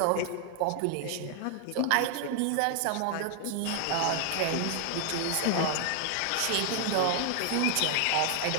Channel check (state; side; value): different; both; correlation 0.00